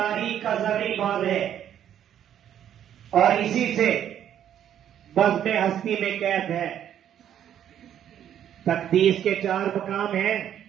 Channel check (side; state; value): left; quieter; 10.2 dB